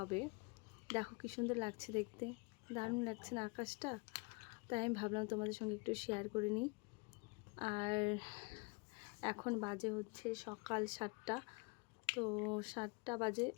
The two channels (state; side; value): quieter; right; 29.5 dB